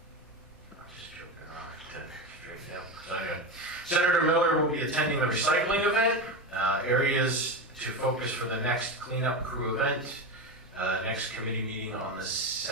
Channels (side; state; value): both; normal; correlation 0.18